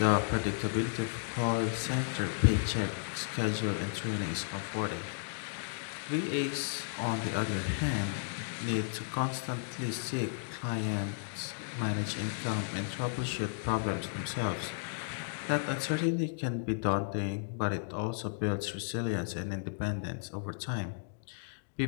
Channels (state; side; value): silent; right; digital silence